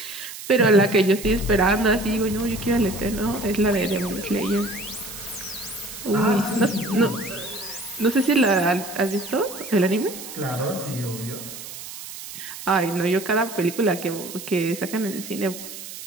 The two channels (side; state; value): right; noise; hiss, 12 dB below the sound